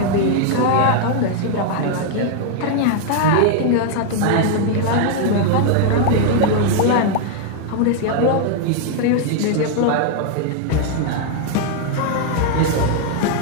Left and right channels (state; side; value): different; both; correlation 0.00